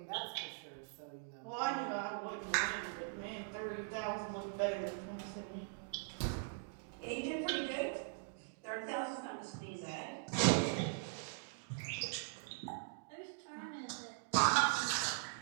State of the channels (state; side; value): silent; left; digital silence